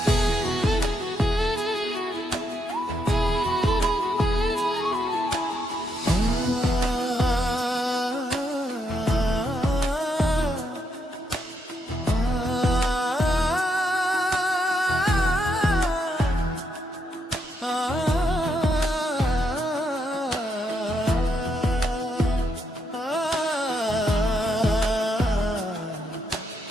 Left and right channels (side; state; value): both; normal; correlation 0.78